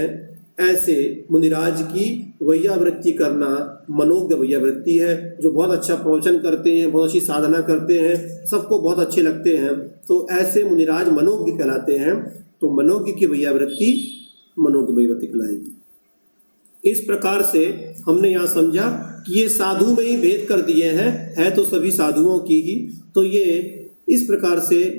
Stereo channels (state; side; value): inverted; both; correlation -1.00